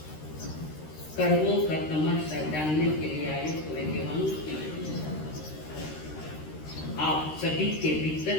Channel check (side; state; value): right; late; 13 ms